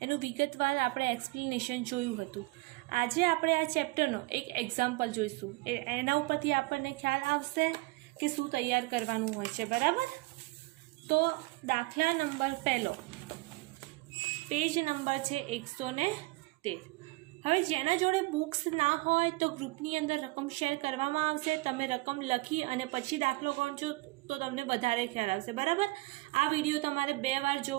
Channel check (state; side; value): quieter; left; 23.0 dB